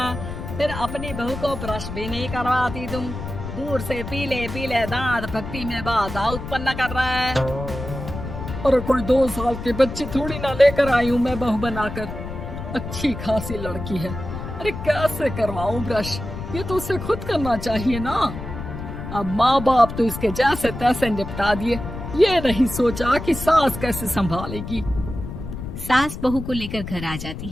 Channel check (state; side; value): noise; left; rumble, 8 dB below the sound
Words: फिर अपनी बहू को ब्रश भी नहीं करवाती तुम। दूर से पीले पीले दांत भक्ति में बाधा उत्पन्न कर रहा है। अरे कोई 2 साल के बच्चे थोड़ी ना लेकर आई हूँ मैं बहू बनाकर, अच्छी खासी लड़की है। अरे कैसे करवाऊं ब्रश, ये तो उसे खुद करना चाहिए ना। अब माँ बाप तो इसके जैसे तैसे निपटा दिए, ये नहीं सोचा कि सास कैसे संभालेगी। सास बहू को लेकर घर आ जाती